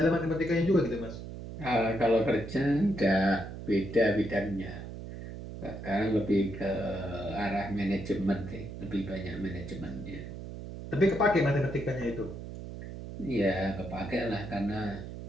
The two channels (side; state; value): right; noise; hum, 10 dB below the sound